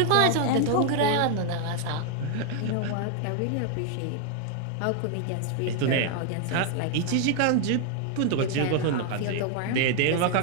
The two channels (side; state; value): both; different; correlation 0.00